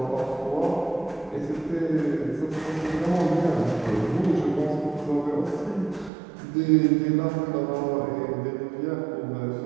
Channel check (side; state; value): left; drops out; at 6.1 s